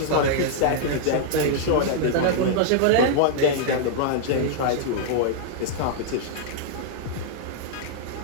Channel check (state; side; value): different; both; correlation -0.01